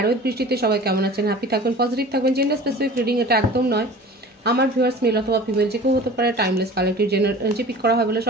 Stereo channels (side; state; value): both; normal; correlation 0.41